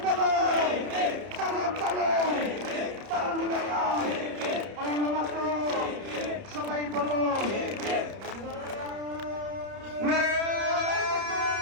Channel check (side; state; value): left; late; 30 ms